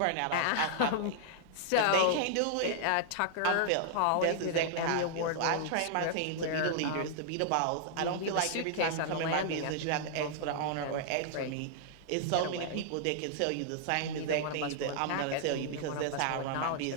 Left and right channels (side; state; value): both; different; correlation -0.01